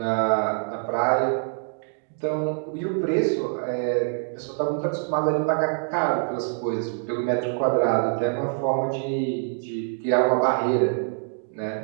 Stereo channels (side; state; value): left; silent; digital silence